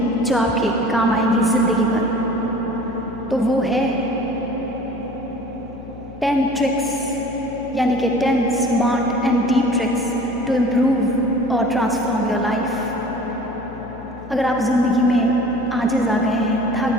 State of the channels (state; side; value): noise; left; hum, 16 dB below the sound